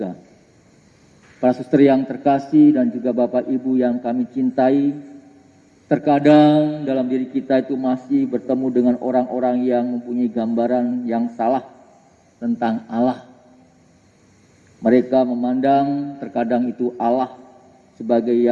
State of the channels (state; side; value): identical; both; correlation 1.00